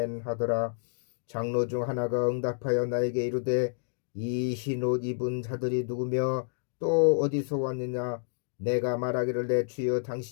하더라. 장로 중 하나가 응답하여 나에게 이르되 이 흰 옷 입은 자들이 누구며 또 어디서 왔느냐. 내가 말하기를 내 주여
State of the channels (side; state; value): right; silent; digital silence